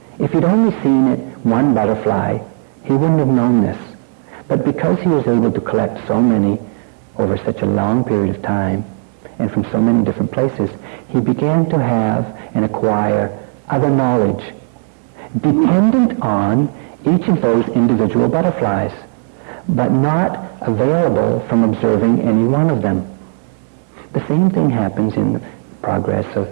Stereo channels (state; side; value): silent; left; 63 dB below the other